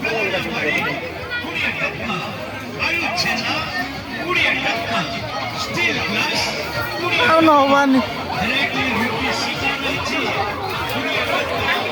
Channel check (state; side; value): identical; both; correlation 1.00